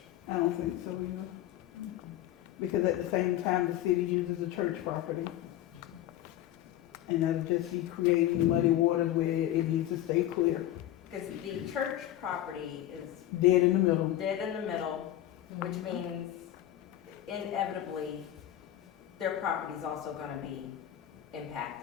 I don't think so either. Because at the same time, the city uses the church property. And that'll just be creating muddy waters where it needs to stay clear. Because the church property is Dead in the middle. dead in the middle, which means inevitably, their property's also gonna be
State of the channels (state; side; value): quieter; right; 13.1 dB